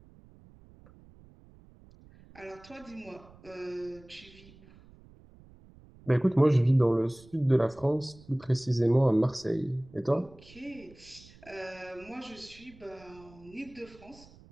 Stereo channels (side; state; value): right; noise; rumble, 24 dB below the sound